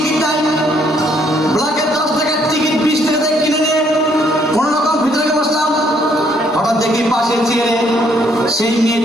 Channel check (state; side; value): normal; both; correlation 0.68